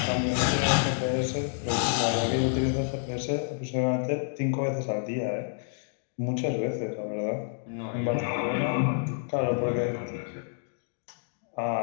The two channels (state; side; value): silent; right; digital silence